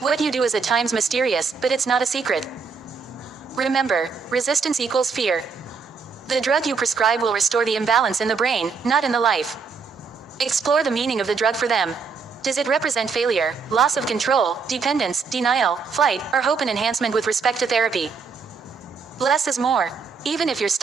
you do is at times mysterious, but it's not a secret. Remember, resistance equals fear. The drug you prescribe will restore the imbalance in the brain, not in the life. Explore the meaning of the drug for them. Does it represent failure, loss of control, dependence, denial, flight, or hope and enhancement with respect to therapy? Less is more. Even if your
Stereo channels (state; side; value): quieter; left; 5.2 dB